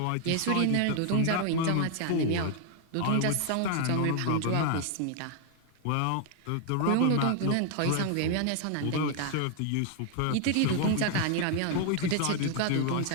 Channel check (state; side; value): different; both; correlation 0.00